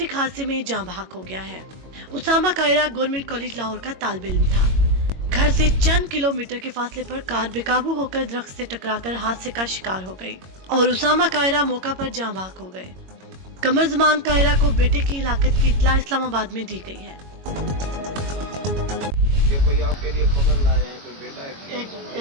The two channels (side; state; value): left; late; 22 ms